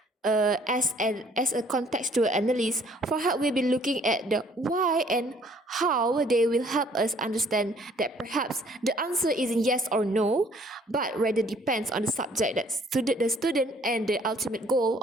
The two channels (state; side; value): normal; both; correlation 0.59